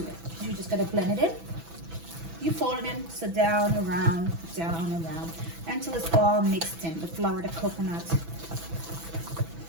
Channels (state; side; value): late; left; 6.0 ms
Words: it. You just gotta blend it in. You fold it in, so down, around, until it's all mixed in. The flour, the coconut,